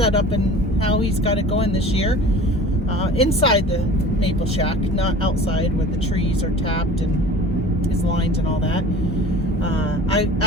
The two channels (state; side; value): normal; both; correlation 0.41